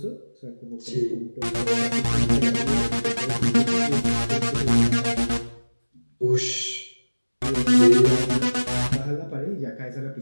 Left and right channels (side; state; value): both; inverted; correlation -1.00